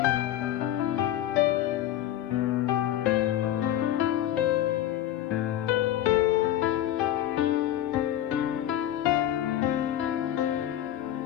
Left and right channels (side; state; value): right; quieter; 12.4 dB